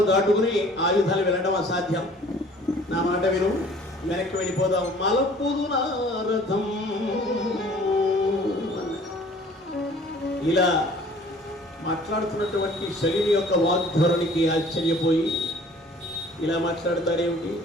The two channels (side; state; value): both; normal; correlation 0.52